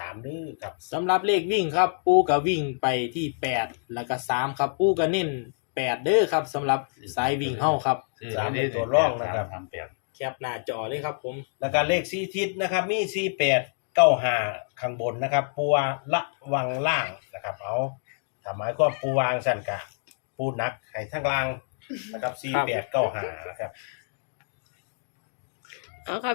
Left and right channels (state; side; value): silent; right; digital silence